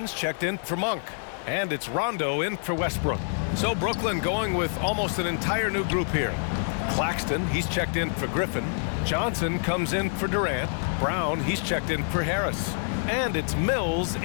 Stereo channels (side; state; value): right; silent; 60 dB below the other